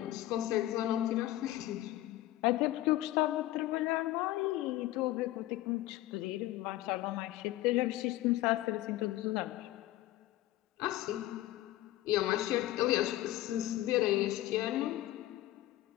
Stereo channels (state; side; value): quieter; right; 15.6 dB